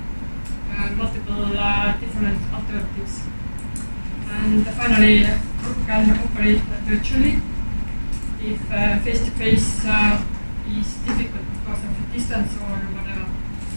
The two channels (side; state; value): both; inverted; correlation -1.00